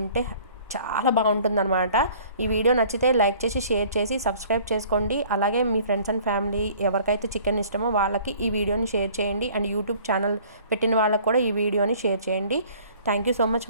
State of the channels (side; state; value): both; inverted; correlation -0.52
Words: చాలా బాగుంటుందన్నమాట. ఈ వీడియో నచ్చితే లైక్ చేసి, షేర్ చేసి, సబ్స్క్రైబ్ చేసుకోండి. అలాగే మీ ఫ్రెండ్స్ అండ్ ఫ్యామిలీ ఎవరికైతే చికెన్ ఇష్టమో వాళ్ళకి ఈ వీడియోని షేర్ చేయండి. అండ్ యూట్యూబ్ ఛానల్ పెట్టిన వాళ్ళకి కూడా ఈ వీడియోని షేర్ చేయండి. Thank you so much